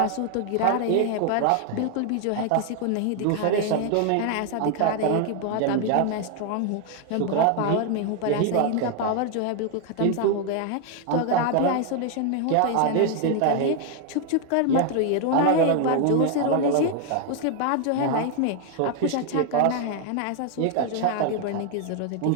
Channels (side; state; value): both; different; correlation 0.00